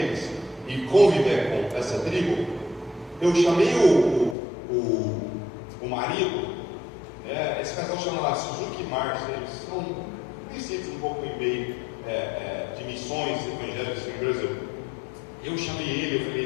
e conviver com essa tribo, eu chamei o marido, esse casal chama lá Suzuki Mars, eles são conhecidos um pouco em meio de missões evangélicas no Brasil. Eu chamei ele, eu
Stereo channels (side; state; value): right; drops out; at 4.4 s